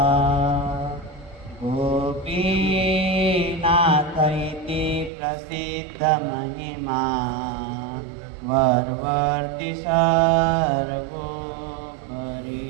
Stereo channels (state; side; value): drops out; left; at 5.1 s